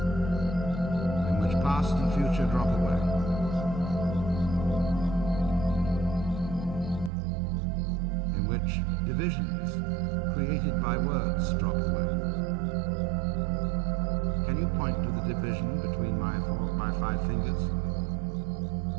in which past and future drop away. Which divisions created by words drop away. Can you point to the division between my 5 fingers?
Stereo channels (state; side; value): drops out; left; at 7.1 s